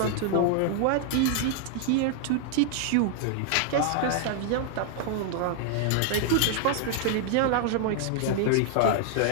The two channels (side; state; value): both; different; correlation 0.00